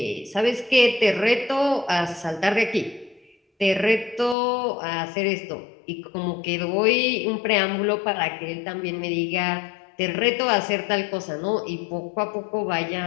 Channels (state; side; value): drops out; right; at 4.4 s